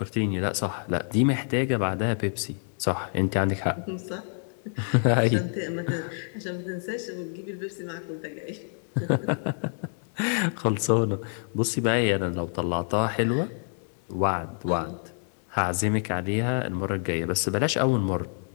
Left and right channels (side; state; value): right; silent; digital silence